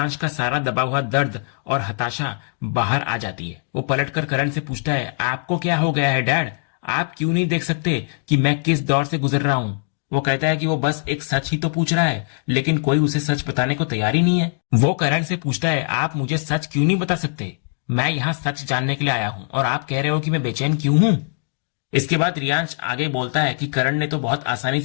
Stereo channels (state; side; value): silent; right; digital silence